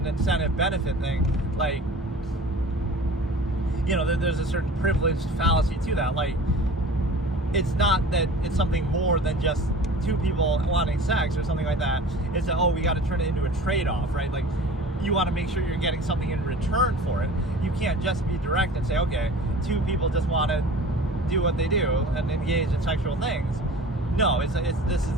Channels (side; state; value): both; normal; correlation 0.41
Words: incentive benefit thing. Like, there's a certain privileged fallacy to that. Like, it's not that it's something more than just two people wanting sex or something like that. It's that, we got to turn it into a trade-off, right? Like, you want to make sure you're getting something in return for it. You can't just be direct and say, okay, two people just want to do what they do and engage in sexual things. No, this is